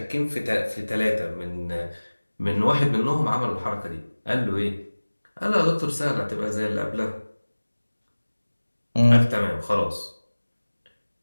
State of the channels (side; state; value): both; inverted; correlation -1.00